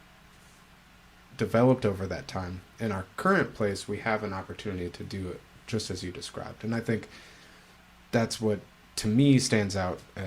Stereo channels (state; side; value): identical; both; correlation 1.00